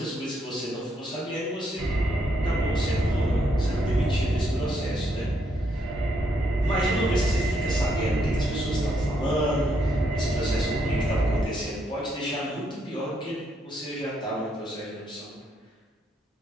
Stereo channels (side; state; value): both; normal; correlation 0.75